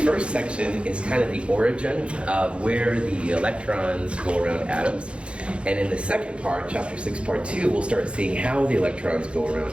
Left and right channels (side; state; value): left; late; 0.058 ms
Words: first section is kind of the origin of where the electrons go around atoms. And in the second part, Chapter 6, Part 2, we'll start seeing how the electrons go around